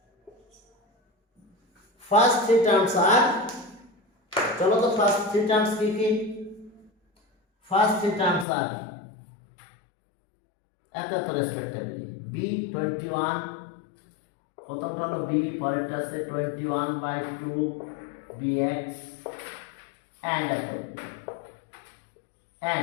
terms are চলো তো first 3 terms কি কি? ফার্স্ট 3 টার্মস আর এত রেসপেক্টিভলি b21, প্রথমটা হলো b, পরেরটা আছে 21/2 bx and এত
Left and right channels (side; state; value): right; drops out; at 8.5 s